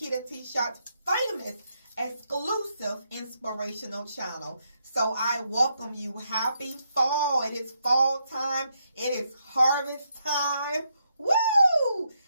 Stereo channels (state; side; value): inverted; both; correlation -0.79